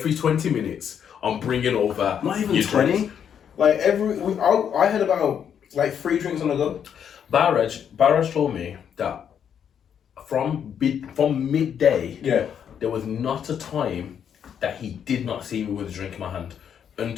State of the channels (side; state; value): right; quieter; 8.3 dB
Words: 20 minutes, I'm bringing over not even 20. Drinks. Like I had about like 3 drinks on the go. Barrage told me that from midday, there was not a time that he did not see me with a drink in my hand